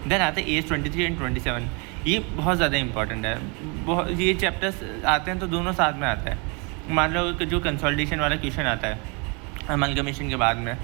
देन आते हैं AS 23 एंड 27, ये बहुत ज़्यादा इंपॉर्टेंट है। बहुत ये चैप्टर्स आते हैं तो दोनों साथ में आता है। मान लो कि जो कंसोलिडेशन वाला क्वेश्चन आता है अमलगमेशन के बाद में,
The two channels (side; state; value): left; quieter; 32.1 dB